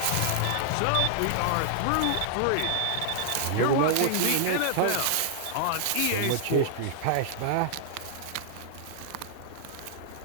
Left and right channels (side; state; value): both; different; correlation 0.00